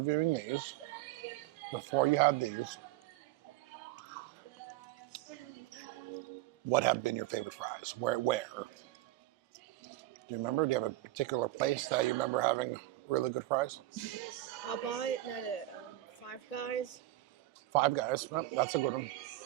these. Before you had these, what have been your favorite fries? Where? Do you remember? Do you have a particular place that you remember having really good fries? Popeye, Five Guys. Five Guys. Well, that's a good one.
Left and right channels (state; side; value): quieter; left; 16.2 dB